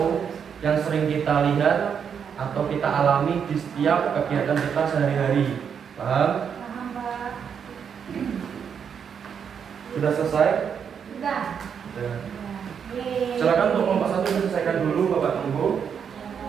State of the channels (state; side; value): quieter; left; 7.3 dB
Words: yang sering kita lihat atau kita alami di setiap kegiatan kita sehari-hari. Paham? Paham, Pak. Sudah selesai? Sudah. Sudah. Yeay. Silakan untuk kelompok 1 diselesaikan dulu, Bapak tunggu.